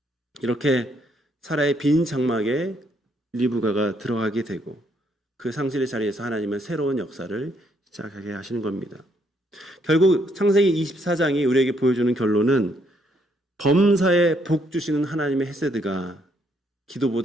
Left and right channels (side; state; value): both; normal; correlation 0.71